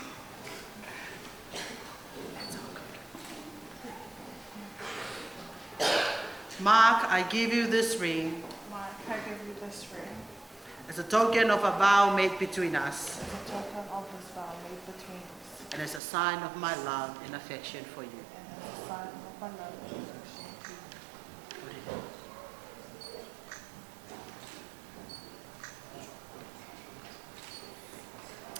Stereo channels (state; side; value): drops out; left; at 16.0 s